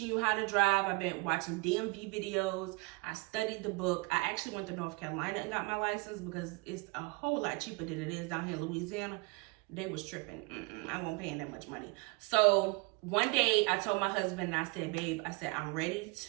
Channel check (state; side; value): quieter; left; 26.8 dB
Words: you how to drive. I've been watching DMV videos. I studied the book. I actually went to North Carolina and got my license, because it's a whole lot cheaper than it is down here in Louisiana. They was tripping. I won't pay that much money. So one day I told my husband, and I said, babe, I said, I'm ready